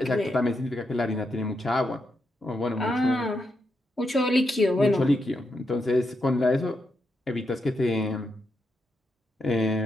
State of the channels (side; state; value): both; normal; correlation 0.83